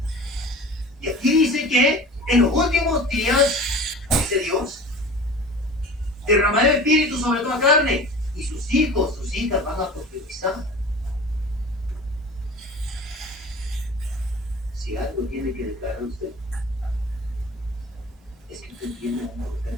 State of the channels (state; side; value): normal; both; correlation 0.38